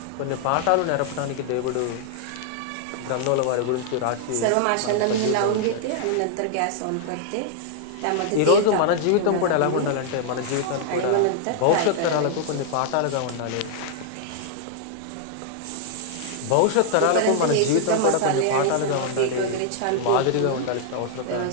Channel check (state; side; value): different; both; correlation 0.00